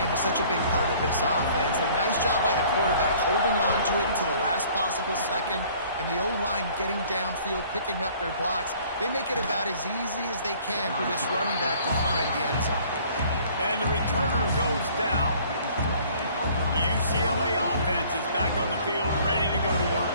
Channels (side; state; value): both; inverted; correlation -0.55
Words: is such a big part of this offense. A nice job by the quarterback holding on to it until the last possible second, and the O-line getting downfield, picking up their blocks. They make it about as easy as they can for this running back to find the end zone. And the returner goes down. The UCLA offense is back on the field, ready to go to work.